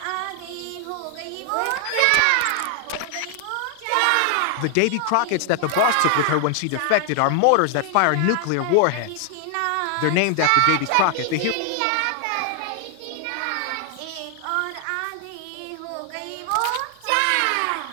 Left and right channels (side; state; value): both; different; correlation 0.00